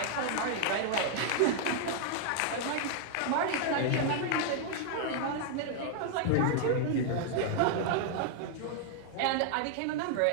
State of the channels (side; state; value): both; different; correlation 0.00